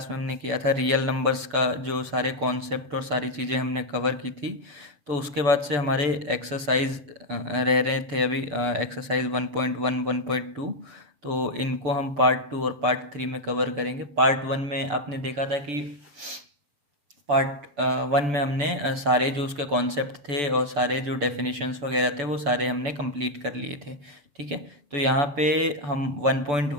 में हमने किया था रियल नंबर्स का जो सारे कॉन्सेप्ट और सारी चीज़ें हमने कवर की थी। तो उसके बाद से हमारे एक्सरसाइज रह रहे थे अभी एक्सरसाइज 1.1 1.2। तो इनको हम पार्ट 2 और पार्ट 3 में कवर करेंगे। पार्ट 1 में आपने देखा था कि पार्ट 1 में हमने सारे जो उसके कॉन्सेप्ट थे और सारे जो डेफिनेशंस वगैरह थे वो सारे हमने कंप्लीट कर लिए थे। ठीक है, तो यहाँ पे हम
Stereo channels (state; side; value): late; left; 6.9 ms